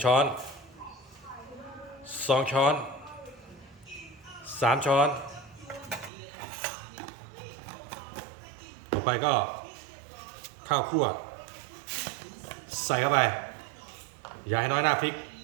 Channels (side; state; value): left; drops out; at 6.1 s